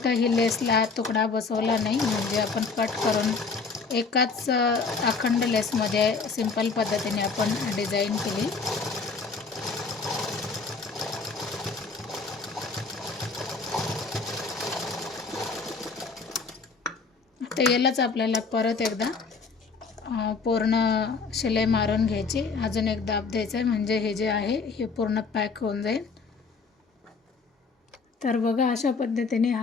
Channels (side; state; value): right; quieter; 4.6 dB